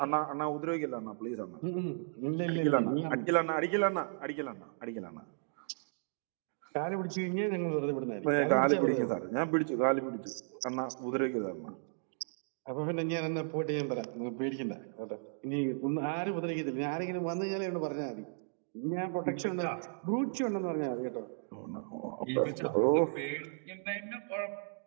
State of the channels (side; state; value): left; silent; digital silence